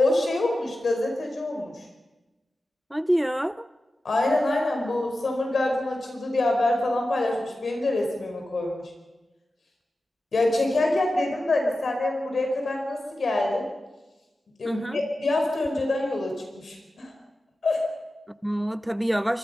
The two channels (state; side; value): normal; both; correlation 0.93